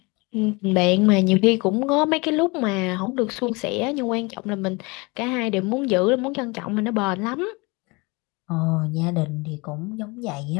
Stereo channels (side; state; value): right; quieter; 26.7 dB